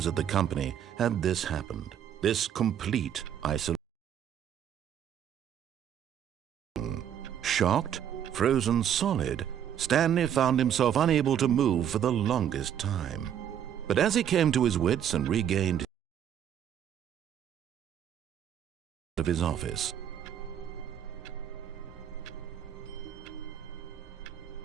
at the company had this happened. This complete isolation. Shocked, frozen solid, Stanley found himself unable to move for the longest time. But as he came to his wits and regained of his office,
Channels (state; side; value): quieter; left; 9.6 dB